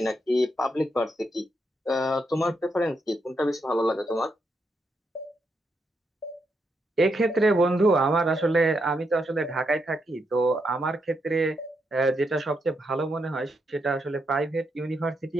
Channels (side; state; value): both; normal; correlation 0.81